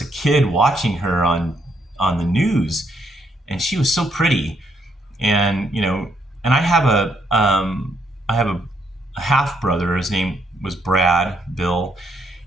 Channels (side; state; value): both; normal; correlation 0.73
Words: kid watching her on the news, and she was so pretty. And, you know, and I have a half brother. His name was Bill,